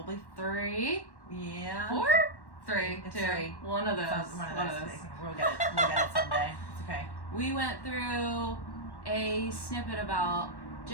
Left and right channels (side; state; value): right; late; 1.1 ms